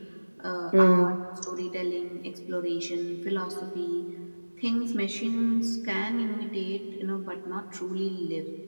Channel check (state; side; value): inverted; both; correlation -1.00